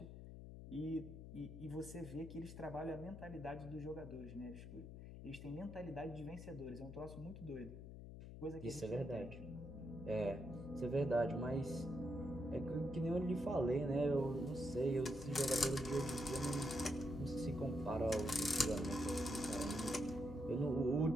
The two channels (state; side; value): noise; left; hum, 11 dB below the sound